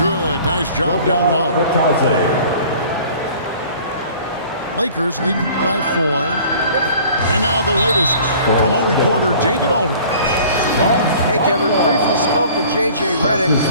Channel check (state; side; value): inverted; both; correlation -0.49